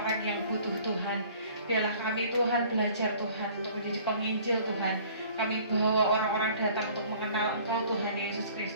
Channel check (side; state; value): both; inverted; correlation -0.52